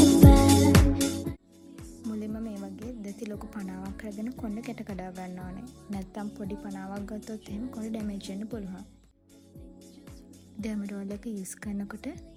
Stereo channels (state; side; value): identical; both; correlation 1.00